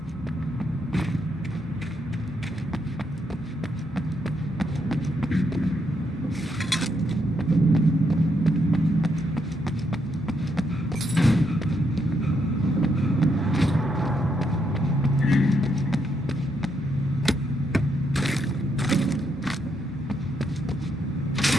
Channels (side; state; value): both; normal; correlation 0.77